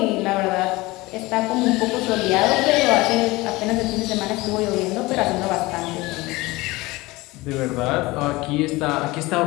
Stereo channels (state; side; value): quieter; right; 21.1 dB